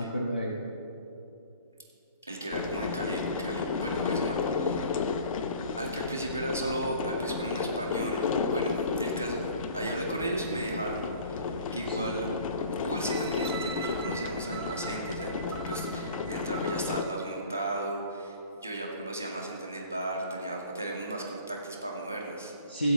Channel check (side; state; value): both; inverted; correlation -0.48